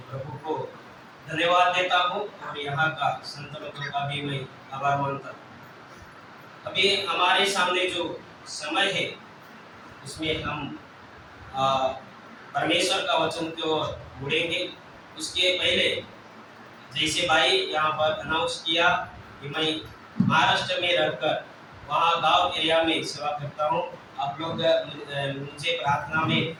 प्रभु को धन्यवाद देता हूँ और यहाँ का संत लोगों का भी मैं आभार मानता हूँ। अभी हमारे सामने जो समय है उसमें हम परमेश्वर का वचन की ओर मुड़ेंगे। उसके पहले जैसे भाई यहाँ पर अनाउंस किया कि मैं महाराष्ट्र में रहकर वहाँ गांव एरिया में सेवा करता हूँ। आप लोग मुझे प्रार्थना में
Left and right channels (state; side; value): identical; both; correlation 1.00